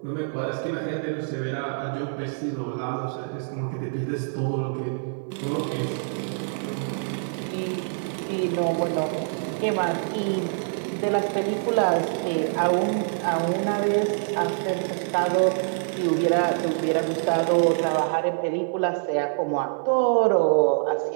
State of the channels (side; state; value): left; silent; 56 dB below the other